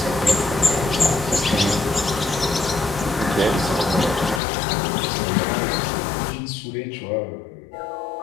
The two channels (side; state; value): right; drops out; at 4.4 s